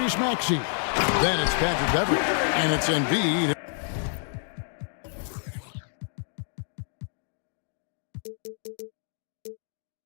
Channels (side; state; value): right; silent; digital silence